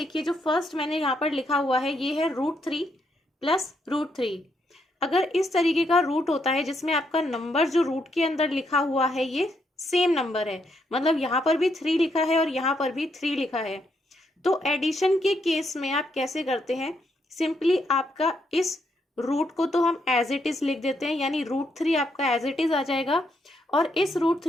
जो फर्स्ट मैंने यहाँ पर लिखा हुआ है ये है √3 प्लस √3। अगर इस तरीके का रूट होता है जिसमें आपका नंबर जो रूट के अंदर लिखा हुआ है ये सेम नंबर है, मतलब यहाँ पर भी 3 लिखा है और यहाँ पर भी 3 लिखा है, तो एडिशन के केस में आप कैसे करते हैं। सिंपली आपका इस रूट को तो हम एज इट इज लिख देते हैं, यानी √3 आपका एज इट इज आ जाएगा। और इस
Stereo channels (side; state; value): both; normal; correlation 0.77